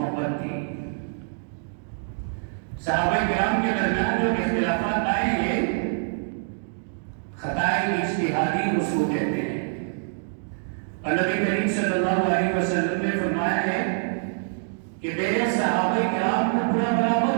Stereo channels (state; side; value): silent; left; digital silence